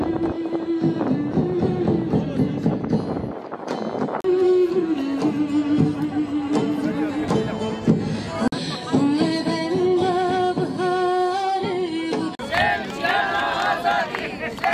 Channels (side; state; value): both; identical; correlation 1.00